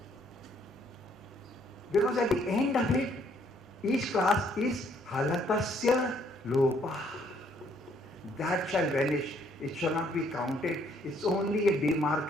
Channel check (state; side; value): normal; both; correlation 0.66